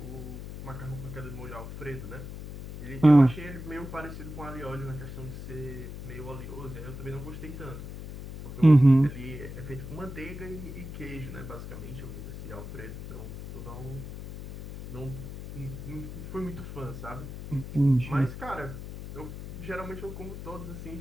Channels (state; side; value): noise; left; hum, 9 dB below the sound